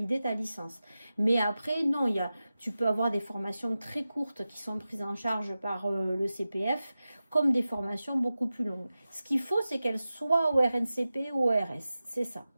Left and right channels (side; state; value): both; inverted; correlation -0.94